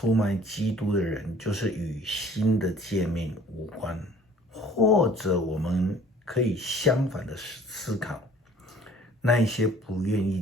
卖基督的人，就是与新的诫命无关。或者我们可以相反的思考，那一些不愿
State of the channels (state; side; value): normal; both; correlation 0.52